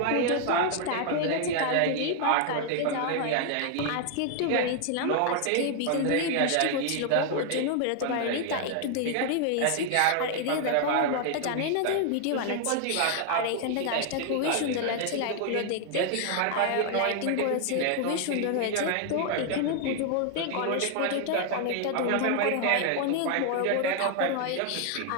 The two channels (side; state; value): both; different; correlation 0.00